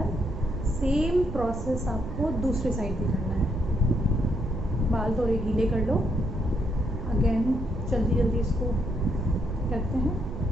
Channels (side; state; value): right; noise; rumble, 8 dB below the sound